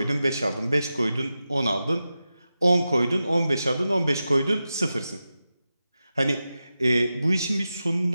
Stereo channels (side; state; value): both; inverted; correlation -0.92